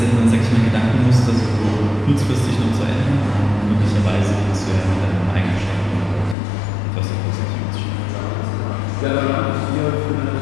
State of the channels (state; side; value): drops out; right; at 6.4 s